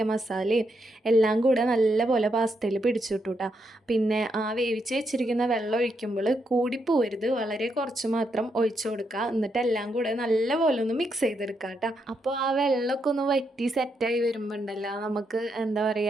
മസാലയും എല്ലാം കൂടെ നല്ലപോലെ പാസ്തയിൽ പിടിച്ചിട്ടു കേട്ടോ. പിന്നെ ആ വേവിച്ച് വെച്ചിരിക്കുന്ന വെള്ളം ഒഴിക്കുമ്പോൾ കൂടിപ്പോവരുത്, വളരെ കുറച്ച് മാത്രം ഒഴിച്ചു കൊടുക്കുക. എന്നിട്ട് എല്ലാം കൂടെ നല്ലപോലെ ഒന്ന് മിക്സ് ചെയ്തെടുക്കുക കേട്ടോ. അപ്പോൾ ആ വെള്ളമൊക്കെ ഒന്ന് വറ്റി സെറ്റായി വരുമ്പോൾ ഉണ്ടല്ലോ നമുക്ക് എന്താ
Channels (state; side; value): normal; both; correlation 0.80